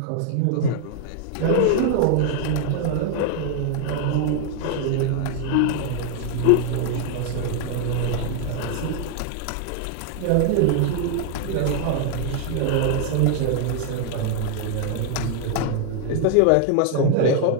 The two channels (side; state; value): both; different; correlation 0.00